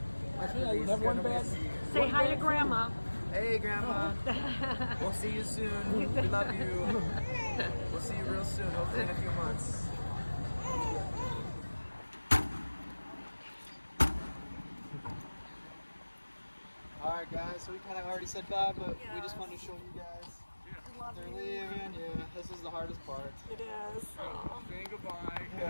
I think I didn't have one bad. Say hi to Grandma. Hey, Grandma. We'll see you soon. We love you. We'll see you real soon, hopefully in a few months. Alright guys, so we kind of already said bye, but we just wanted to show you guys. They're leaving, yeah, this is the hardest part. It is. Saying goodbye.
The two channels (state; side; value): inverted; both; correlation -1.00